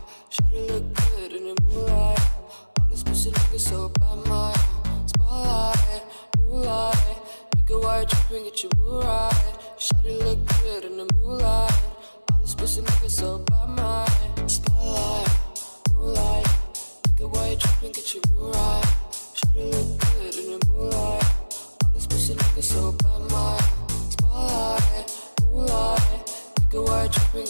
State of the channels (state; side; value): inverted; both; correlation -1.00